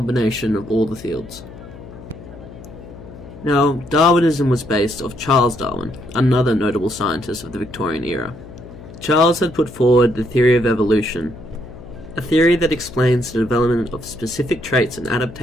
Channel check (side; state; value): left; noise; hum, 16 dB below the sound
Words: of all the fields. Now, Darwinism was based off Charles Darwin, another notable scientist of the Victorian era. Charles had put forward the theory of evolution, a theory that explains the development of specific traits and